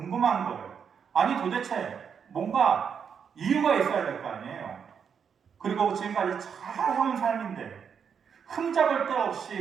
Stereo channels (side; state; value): left; quieter; 7.0 dB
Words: 거예요. 아니 도대체 뭔가 이유가 있어야 될 거 아니에요. 그리고 지금까지 잘 해온 삶인데 흠잡을 데